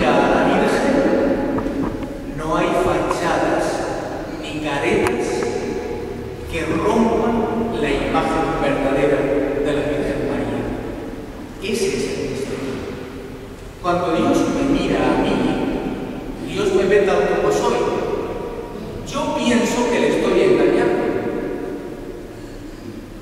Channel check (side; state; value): both; identical; correlation 1.00